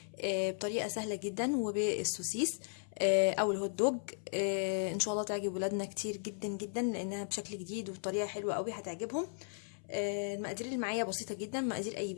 بطريقة سهلة جدا وبالسوسيس أو الهوت دوج. إن شاء الله تعجب ولادنا كتير جدا جدا لأنها بشكل جديد وبطريقة حلوة قوي هتعجبهم. المقادير اللي معايا بسيطة جدا، مقادير أي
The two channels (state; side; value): silent; right; 54 dB below the other